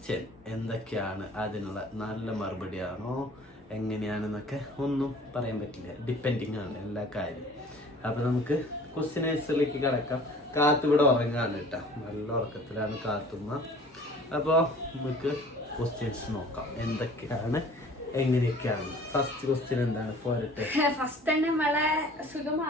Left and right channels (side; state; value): both; normal; correlation 0.48